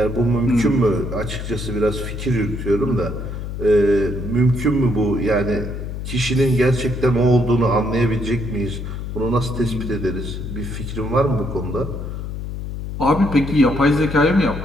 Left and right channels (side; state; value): left; noise; hum, 6 dB below the sound